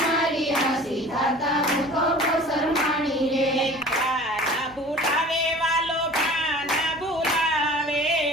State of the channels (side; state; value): right; noise; hum, 25 dB below the sound